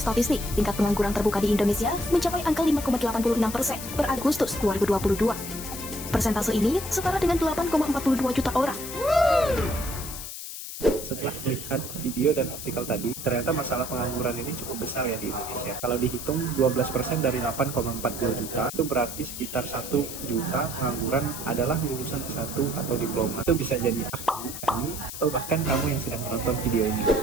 tingkat pengangguran terbuka di Indonesia mencapai angka 5,86% per Agustus 2022. Persentase ini setara dengan 8,42 juta orang. Setelah melihat video dan artikel tadi, ternyata masalah pengangguran ini cukup besar ya di Indonesia. Kalau dihitung 12% dari 8,40 juta, itu berarti sekitar 1 juta pengangguran adalah lulusan S1 atau diploma. Itu bisa jadi aku, kami, atau bahkan kamu yang sedang menonton video ini.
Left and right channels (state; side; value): noise; left; hiss, 9 dB below the sound